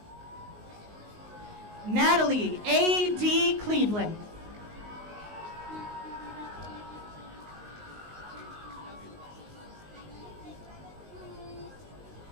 Natalie A.D. Cleveland.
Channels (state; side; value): late; left; 19 ms